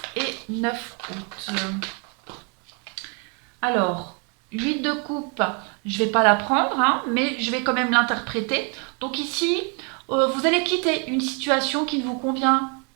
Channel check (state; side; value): quieter; left; 36.0 dB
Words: et 9 août. Alors, 8 de coupe, je ne vais pas la prendre, mais je vais quand même l'interpréter. Donc ici, vous allez quitter une situation qui ne vous convient